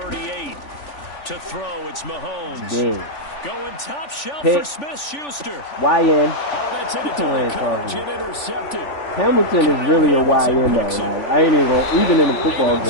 To throw, it's Mahomes. Dead. Going top shelf Pick. for Smith-Schuster. YN. Oh, that's into double coverage and intercepted. Hamilton is really a YN though. Like, I ain't even gonna, even in the football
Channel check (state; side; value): late; right; 3.5 ms